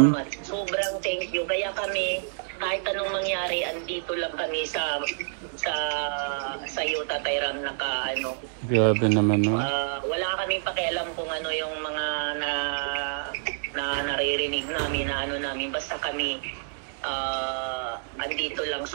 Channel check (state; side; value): silent; left; digital silence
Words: Salamat. Sobrang thank you. Kaya kami, kahit anong mangyari, andito lang kami sa iyo, Tatay Ram, Grabe naman, no? wala kaming pakialam kung yung mga naririnig namin namin. Basta kami andito lang